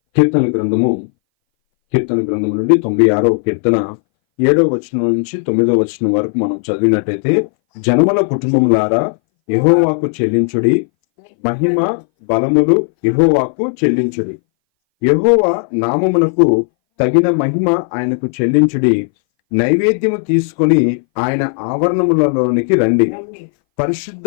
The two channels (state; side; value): silent; right; 62 dB below the other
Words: కీర్తన గ్రంథము నుండి 96వ కీర్తన 7వ వచనం నుంచి 9వ వచనం వరకు మనం చదివినట్టయితే, జనముల కుటుంబములారా యెహోవాకు చెల్లించుడి, మహిమ బలములు యెహోవాకు చెల్లించుడి. యెహోవా నామమునకు తగిన మహిమ ఆయనకు చెల్లించుడి. నైవేద్యము తీసుకొని ఆయన ఆవరణములలోనికి రండి. పరిశుద్ధ